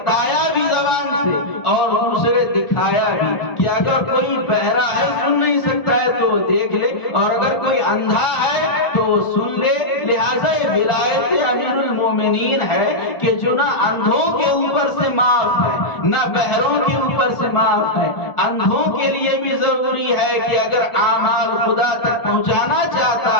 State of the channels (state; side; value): late; right; 1.4 ms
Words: بھی زبان سے اور دوسرے دکھایا بھی کہ اگر کوئی بہرا ہے سن نہیں سکتا ہے تو دیکھ لے، اور اگر کوئی اندھا ہے تو سن لے۔ لہٰذا یہ ولایت امیر المومنین ہے کہ جو نہ اندھوں کے اوپر سے معاف ہے نہ بہروں کے اوپر سے معاف ہے۔ اندھوں کے لیے بھی ضروری ہے کہ اگر اعمال خدا تک پہنچانا چاہتا